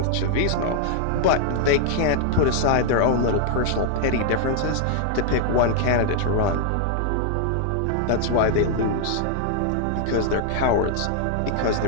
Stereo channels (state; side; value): different; both; correlation -0.01